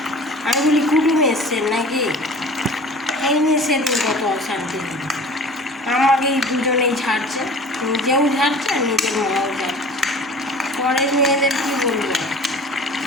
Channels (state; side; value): normal; both; correlation 0.43